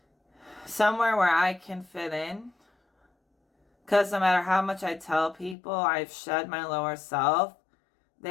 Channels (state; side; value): drops out; right; at 5.6 s